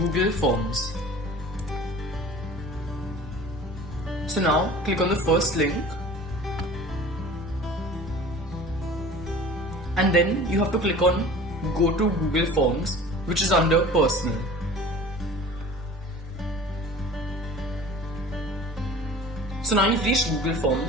Forms. So now click on the first link. And then you have to click on Go to Google Forms, which is under Personal. So now you've reached Google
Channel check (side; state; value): both; normal; correlation 0.42